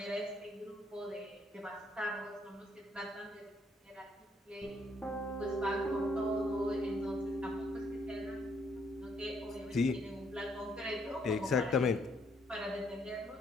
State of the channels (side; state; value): both; normal; correlation 0.70